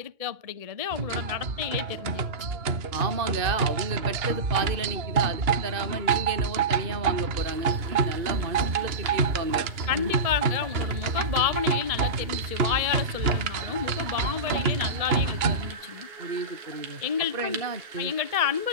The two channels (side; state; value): left; late; 2.8 ms